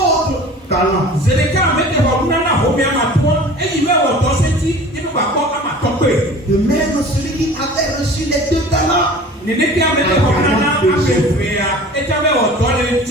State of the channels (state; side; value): normal; both; correlation 0.42